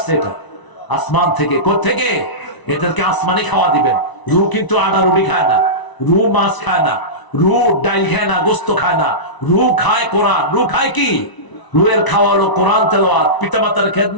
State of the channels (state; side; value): late; right; 1.0 ms